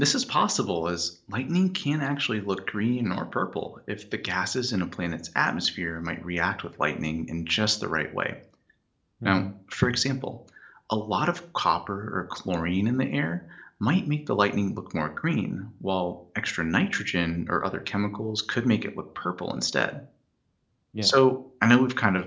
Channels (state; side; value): identical; both; correlation 1.00